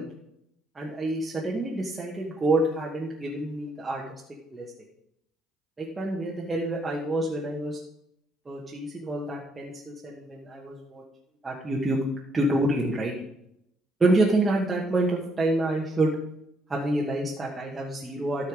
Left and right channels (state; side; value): normal; both; correlation 0.73